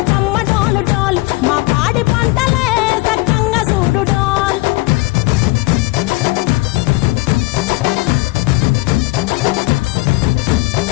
డోలు డోల్, మా పాడి పంటలే సక్కంగా చూడు డోల్.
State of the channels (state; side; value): quieter; right; 21.6 dB